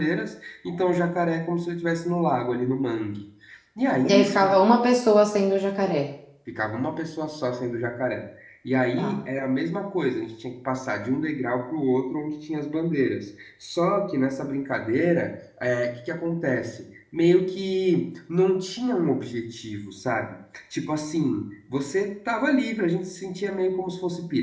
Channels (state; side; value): identical; both; correlation 1.00